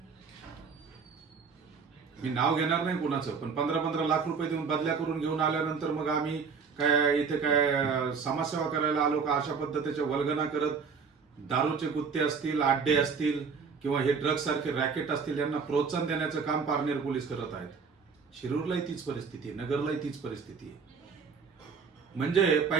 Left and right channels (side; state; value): left; quieter; 5.6 dB